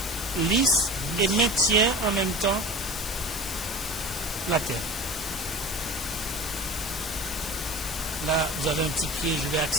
lisse et maintient en même temps la terre. Là, vous avez un petit pied, je vais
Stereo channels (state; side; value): noise; left; hiss, 9 dB below the sound